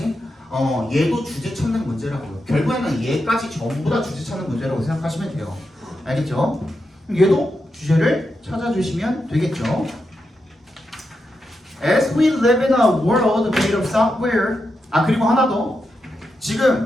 얘도 주제 찾는 문제라고요. 결국에는 얘까지 전부 다 주제 찾는 문제라고 생각하시면 돼요. 알겠죠? 얘도 주제를 찾아주시면 되겠죠. As we live in a world made of software. 그리고 하나 더.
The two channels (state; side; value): normal; both; correlation 0.86